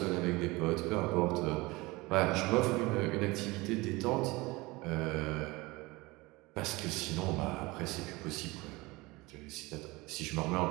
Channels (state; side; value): quieter; left; 22.5 dB